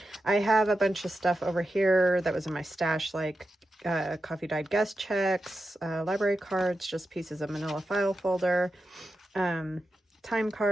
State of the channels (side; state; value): both; normal; correlation 0.90